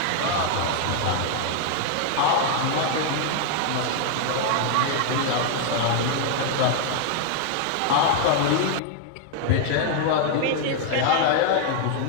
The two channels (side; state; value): both; different; correlation 0.00